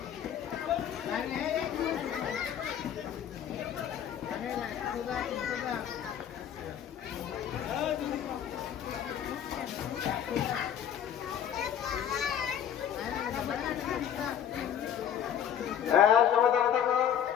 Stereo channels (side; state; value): right; quieter; 9.5 dB